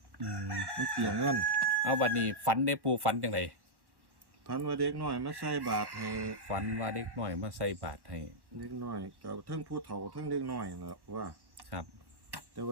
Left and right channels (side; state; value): left; late; 1.1 ms